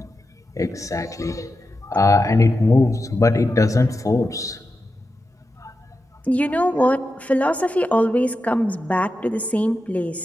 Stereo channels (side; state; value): both; normal; correlation 0.90